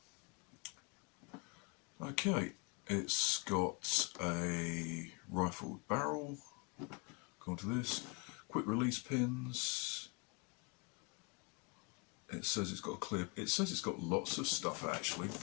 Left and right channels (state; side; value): quieter; right; 31.0 dB